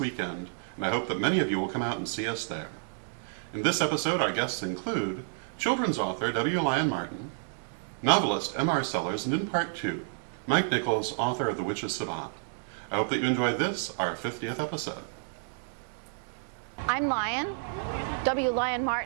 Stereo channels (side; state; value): left; silent; 58 dB below the other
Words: and I hope that many of you will come out and see us there. In this episode, our guests include children's author Lyon Martin, novelist M.R. Sellars, and in part 2, Mike Nichols, author of The Witch's Savant. I hope that you enjoyed this, our 50th episode. I'm Lyon, Lyon